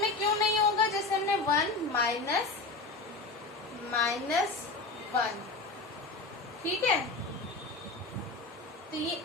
में क्यों नहीं होगा, जैसे हमने 1 माइनस 1, ठीक है, तो ये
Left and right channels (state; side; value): quieter; right; 3.5 dB